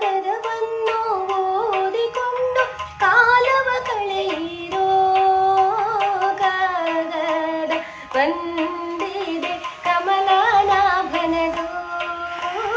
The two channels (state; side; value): identical; both; correlation 1.00